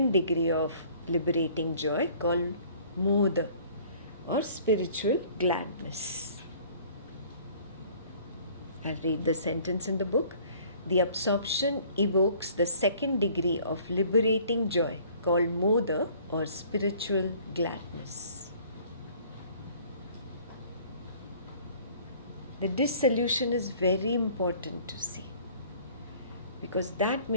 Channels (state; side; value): inverted; both; correlation -0.53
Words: degree of liberating joy called moda, or spiritual gladness. I'll read the sentence in the book. The absorption evokes the second degree of liberating joy called moda, or spiritual gladness. The dissolution is very important to see, because that